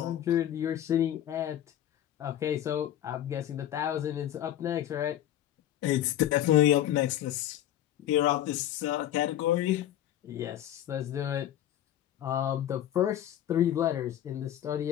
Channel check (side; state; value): right; quieter; 11.7 dB